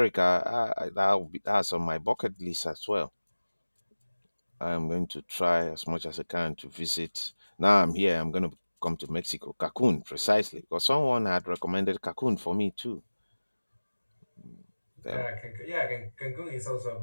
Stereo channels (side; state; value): both; inverted; correlation -1.00